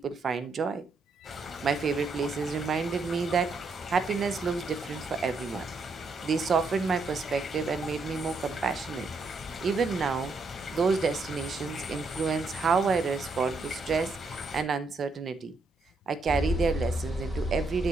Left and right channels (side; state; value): left; quieter; 3.6 dB